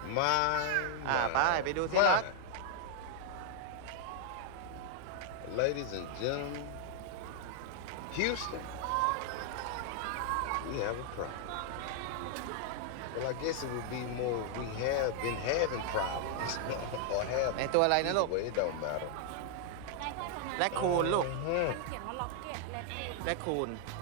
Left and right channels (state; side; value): different; both; correlation 0.00